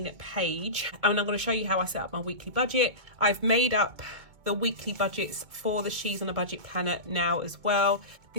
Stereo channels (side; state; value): left; late; 2.2 ms